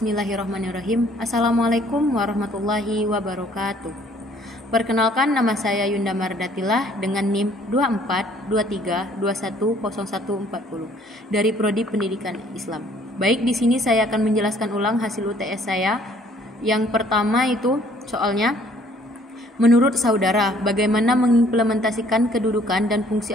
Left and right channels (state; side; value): normal; both; correlation 0.60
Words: Assalamualaikum warahmatullahi wabarakatuh. Perkenalkan, nama saya Yunda Mardatilah dengan NIM 2423210140 dari Prodi Pendidikan Islam. Baik, di sini saya akan menjelaskan ulang hasil UTS saya. Yang pertama itu soalnya, menurut saudara, bagaimana mengimplementasikan kedudukan dan